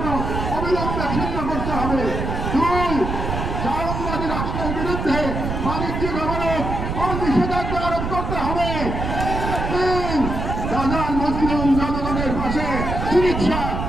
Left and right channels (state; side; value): noise; right; rumble, 3 dB below the sound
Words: অবিলম্বে ছিন্ন করতে হবে। 2, জায়নবাদী রাষ্ট্রের বিরুদ্ধে বাণিজ্যিক অবরোধ ও নিষেধাজ্ঞা আরোপ করতে হবে। 3, গাজার মুসলিম জনগণের পাশে চিকিৎসা,